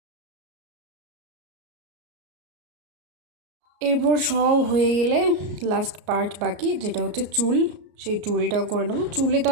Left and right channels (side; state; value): left; late; 33 ms